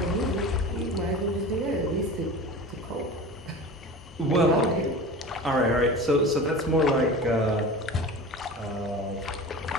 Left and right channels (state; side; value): normal; both; correlation 0.34